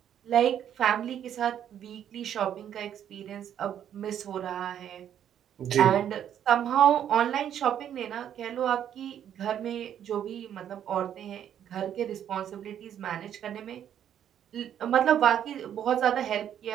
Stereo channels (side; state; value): left; quieter; 9.8 dB